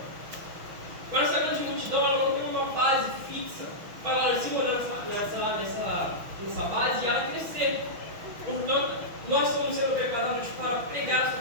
Mas essa grande multidão ela não tem uma base fixa para ela se morar nessa base e ela crescer. Portanto, nós estamos sendo preparados para pregar essa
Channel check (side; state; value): left; late; 6.1 ms